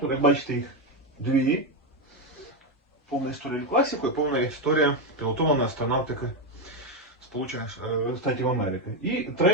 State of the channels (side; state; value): both; normal; correlation 0.08